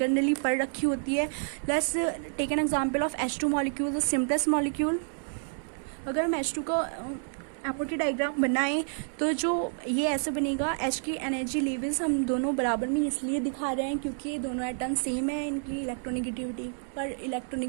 पढ़ रखी होती है. Let's take an example of H2 molecule, the simplest molecule. अगर हम H2 का MOT डायग्राम बनाएं तो जो ये ऐसे बनेगा. H की एनर्जी लेवल्स हम दोनों बराबर में इसलिए दिखा रहे हैं क्योंकि दोनों एटम सेम है, इनकी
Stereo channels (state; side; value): silent; left; 58 dB below the other